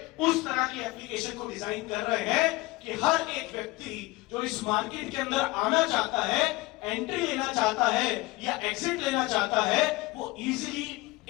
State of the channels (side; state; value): right; quieter; 21.5 dB